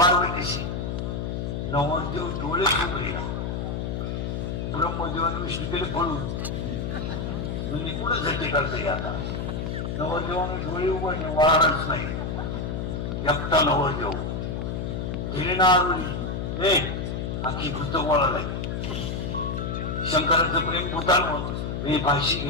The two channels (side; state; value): left; noise; hum, 3 dB below the sound